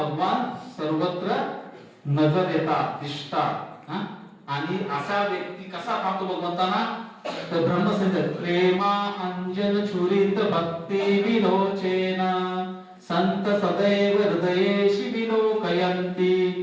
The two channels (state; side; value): identical; both; correlation 1.00